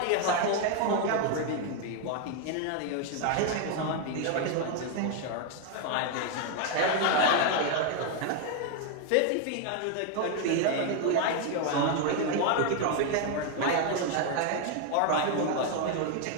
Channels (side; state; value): both; different; correlation 0.01